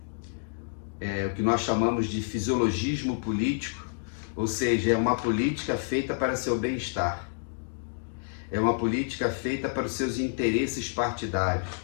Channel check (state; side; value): silent; right; digital silence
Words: o que nós chamamos de fisiologismo político, ou seja, é uma política feita para seu bem-estar. É uma política feita para os seus interesses partidários.